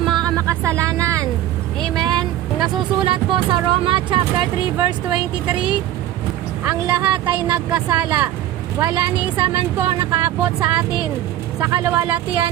makasalanan. Amen. Nasusulat po sa Roma chapter 3 verse 23, ang lahat ay nagkasala. Wala ni isa man po ang nakaabot sa atin sa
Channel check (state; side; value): quieter; left; 13.2 dB